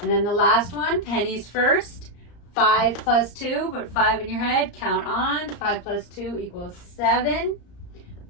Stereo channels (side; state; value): right; late; 34 ms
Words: then the last one, pennies first. 5 plus 2, put 5 in your head. Count on. 5 plus 2 equals 7.